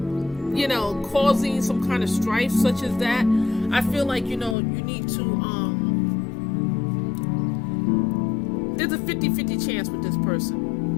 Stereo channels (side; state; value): right; drops out; at 4.5 s